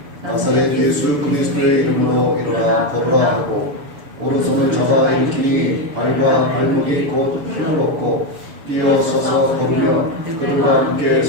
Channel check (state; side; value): late; left; 6.9 ms